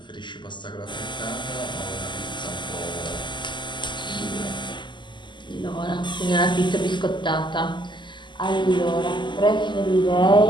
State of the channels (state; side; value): late; right; 0.22 ms